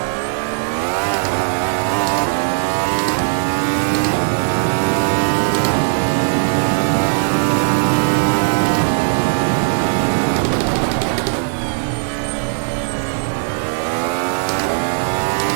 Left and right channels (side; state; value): left; silent; 64 dB below the other